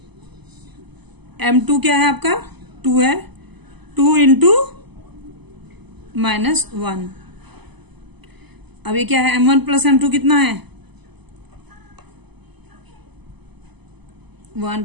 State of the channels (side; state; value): left; late; 0.99 ms